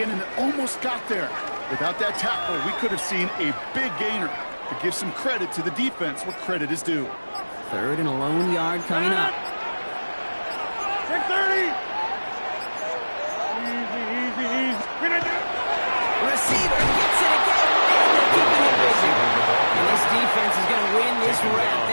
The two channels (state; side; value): inverted; both; correlation -1.00